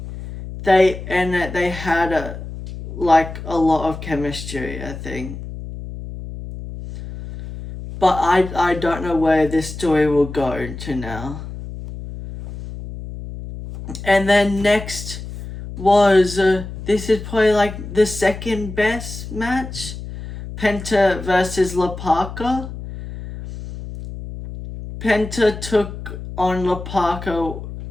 they had a lot of chemistry, I think. But I don't know where this story will go to now. And then next was, this is probably the second best match. Penta versus La Parka. Penta took on La Parka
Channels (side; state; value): left; noise; hum, 10 dB below the sound